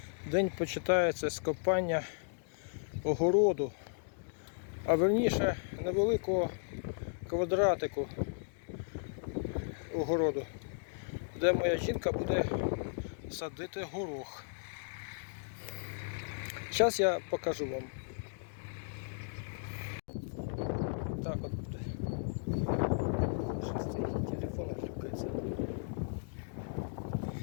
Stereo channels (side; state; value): right; silent; digital silence